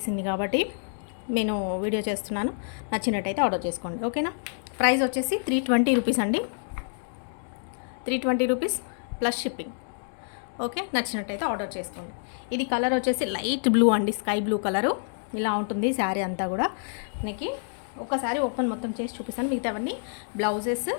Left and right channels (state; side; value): silent; right; digital silence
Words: కాబట్టి నేను వీడియో చేస్తున్నాను. నచ్చినట్టయితే ఆర్డర్ చేసుకోండి, ఓకేనా? ప్రైస్ వచ్చేసి 320 రూపీస్ అండి. 320 రూపీస్ ప్లస్ షిప్పింగ్. ఓకే, నచ్చినట్టయితే ఆర్డర్ చేసుకోండి. ఇది కలర్ వచ్చేసి లైట్ బ్లూ అండి, స్కై బ్లూ కలరు. ఇలా ఉంటుంది శారీ అంతా కూడా. మనకి ఒకసారి ఓపెన్ మొత్తం చేసి చూపిస్తాను, మిగతావన్నీ బ్లౌజెస్